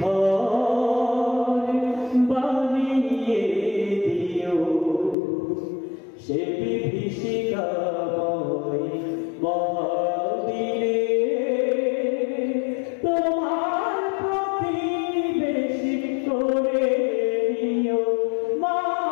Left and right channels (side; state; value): right; drops out; at 5.2 s